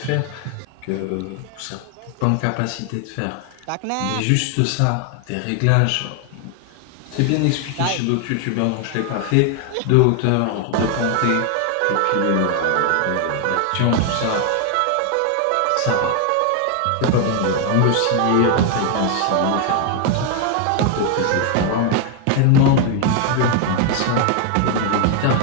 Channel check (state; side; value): different; both; correlation 0.01